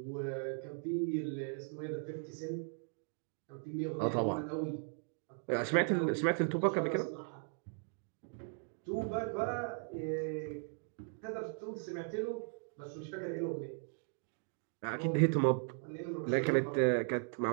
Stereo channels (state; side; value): silent; left; 53 dB below the other